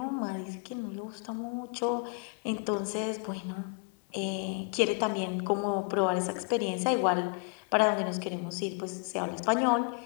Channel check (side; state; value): right; quieter; 37.4 dB